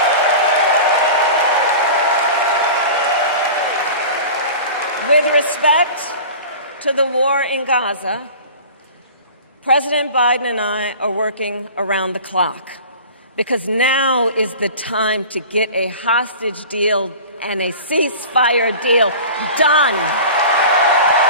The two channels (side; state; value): both; inverted; correlation -0.38